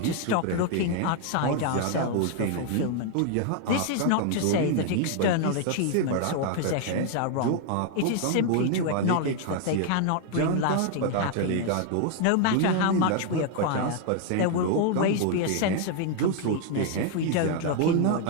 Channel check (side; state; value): both; different; correlation 0.00